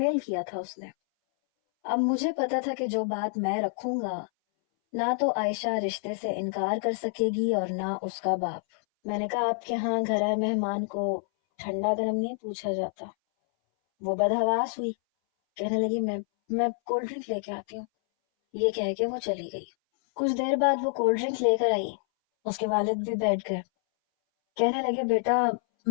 کیا تھا اس نے۔ اب مجھے پتا تھا کہ جو بات میں رکھوں گا نہ تو عائشہ رشتے سے انکار کر سکے گی اور نہ اس کا باپ۔ میں نے کہا آپ کے ہاں گھر آئے مہمان کو ٹھنڈا گرم نہیں پوچھا جاتا؟ وہ بدحواس ہوئی، کہنے لگی میں کولڈ ڈرنک لے کے آتی ہوں۔ یہ کہہ کے وہ چلی گئی۔ کچھ دیر بعد وہ کولڈ ڈرنک لے کر آئی، اس کے والد بھی بیٹھ گئے، کہنے لگے بیٹا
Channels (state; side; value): silent; right; 59 dB below the other